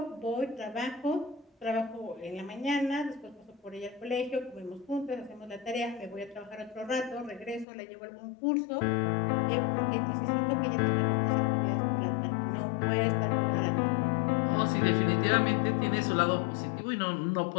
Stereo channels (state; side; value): drops out; right; at 7.7 s